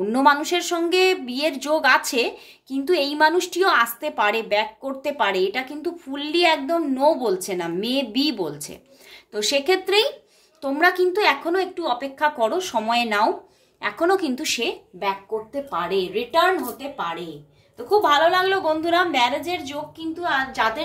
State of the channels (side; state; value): both; identical; correlation 1.00